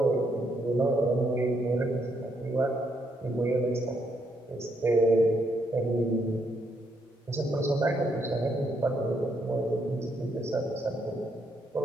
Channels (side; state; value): both; normal; correlation 0.75